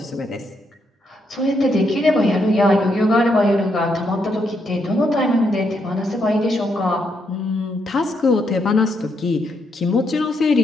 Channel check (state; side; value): normal; both; correlation 0.78